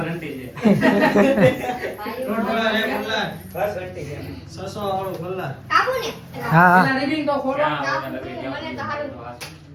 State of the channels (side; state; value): both; identical; correlation 1.00